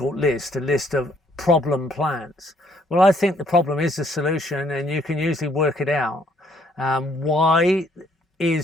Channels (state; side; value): normal; both; correlation 0.66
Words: list, a list of problem plants? Well, I think the problem is the solution, and you can usually work it out. Why